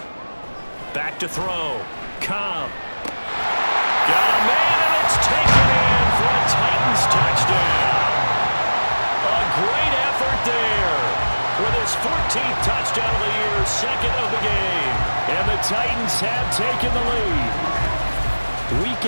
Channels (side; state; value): both; inverted; correlation -1.00